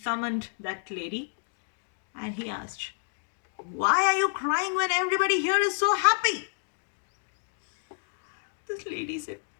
that lady and he asked, Why are you crying when everybody here is so happy? This lady said,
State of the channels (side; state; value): right; silent; digital silence